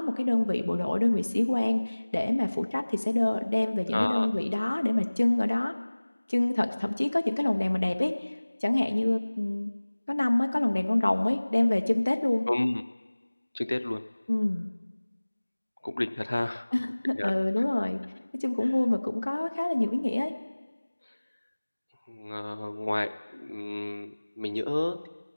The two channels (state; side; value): inverted; both; correlation -1.00